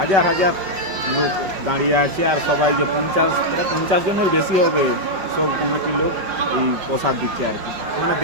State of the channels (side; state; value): left; late; 5.2 ms